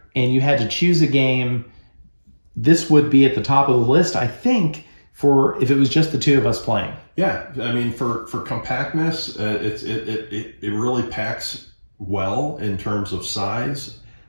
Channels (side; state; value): both; inverted; correlation -1.00